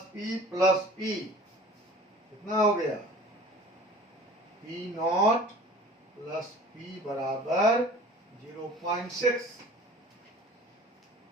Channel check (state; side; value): normal; both; correlation 0.44